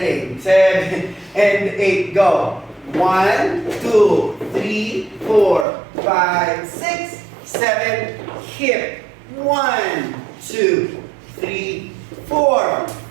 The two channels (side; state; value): left; drops out; at 5.7 s